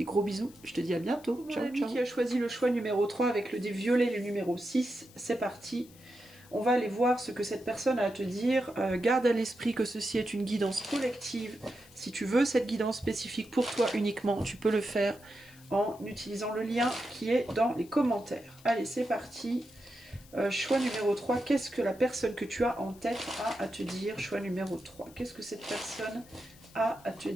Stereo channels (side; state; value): left; noise; hiss, 24 dB below the sound